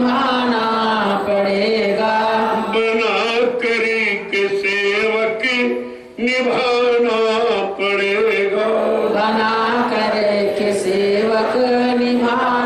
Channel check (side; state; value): both; identical; correlation 1.00